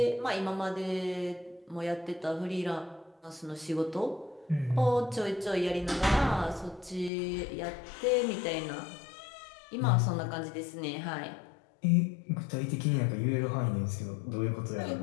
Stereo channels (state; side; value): drops out; right; at 7.1 s